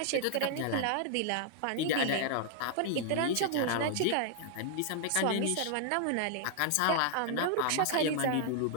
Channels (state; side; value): different; both; correlation 0.00